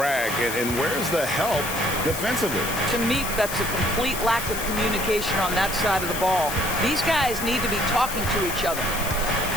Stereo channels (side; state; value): left; noise; hiss, 7 dB below the sound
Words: And where's the help defensively? To me, that's a complete lack of communication on that side of the ball. These guys need to be talking to each other.